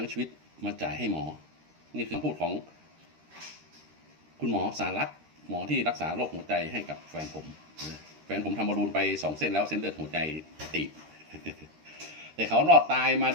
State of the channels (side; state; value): left; late; 13 ms